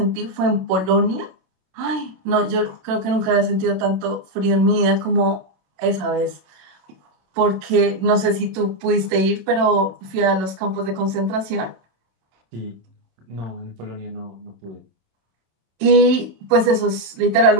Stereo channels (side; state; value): left; late; 27 ms